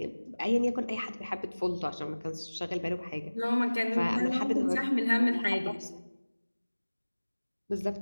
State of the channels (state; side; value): inverted; both; correlation -1.00